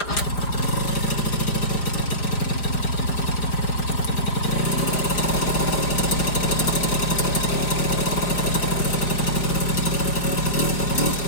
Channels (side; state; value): right; late; 5.1 ms